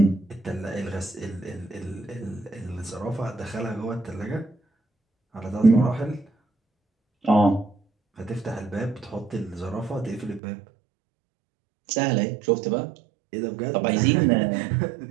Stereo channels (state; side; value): drops out; left; at 10.4 s